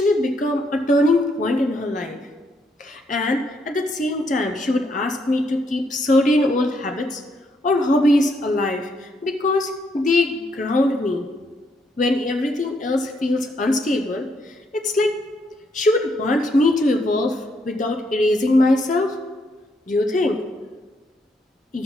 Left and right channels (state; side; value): normal; both; correlation 0.75